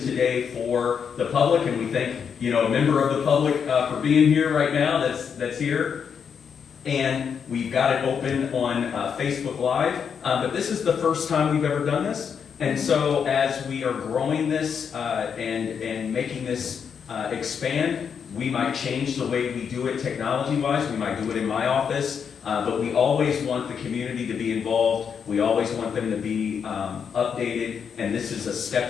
for the public, and we thank a member of the public for being here right now. That's here, and we've got it open on Facebook Live. But this is the first time we've ever done this. And so as we are growing this and making this expand, we might change the way we do it technology-wise. We might do it in my office, but we always want the community to be involved. We always want them to be updated, and this is a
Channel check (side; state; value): right; quieter; 7.0 dB